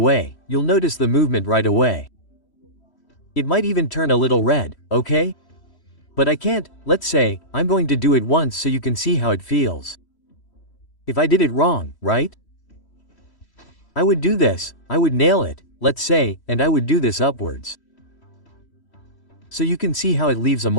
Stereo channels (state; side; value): late; right; 3.1 ms